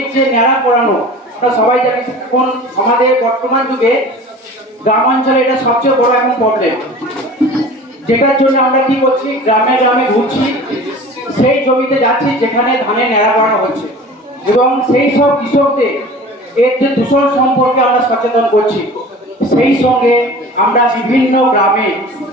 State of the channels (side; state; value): both; normal; correlation 0.40